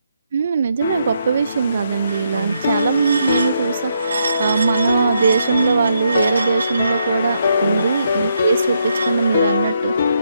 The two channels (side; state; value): both; inverted; correlation -0.77